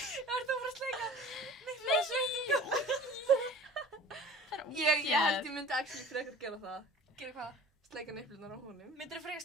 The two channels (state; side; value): normal; both; correlation 0.43